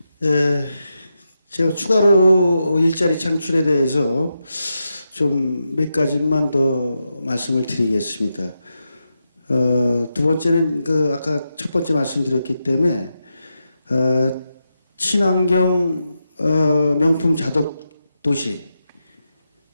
제가 추가로 일자리 창출에 대해서 좀 몇 가지만 더 말씀을 드리겠습니다. 두 번째는 아까 첫 번째 말씀드렸기 때문에 친환경 명품 자덕 도시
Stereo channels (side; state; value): both; inverted; correlation -0.87